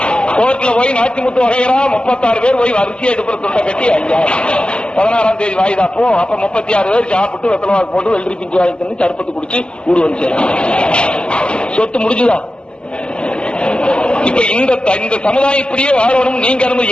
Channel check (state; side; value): late; right; 0.055 ms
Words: கோர்ட்ல போய் நாச்சிமுத்து வகைரா 36 பேர் போய் வரிசையா எடுப்புற துண்டை கட்டி ஐயா 16ஆம் தேதி வாய்தாப்போ. அப்ப 36 பேர் சாப்பிட்டு வெத்தலவாக்கு போட்டு வெள்ளரி பிஞ்சு வாங்கி தந்து சர்பத்து குடிச்சு ஊடு வந்து சொத்து முடிஞ்சுதான். இப்ப இந்த சமுதாயம் இப்படியே வாழணும். நீங்க